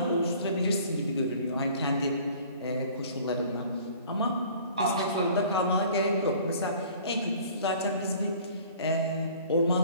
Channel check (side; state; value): both; inverted; correlation -0.50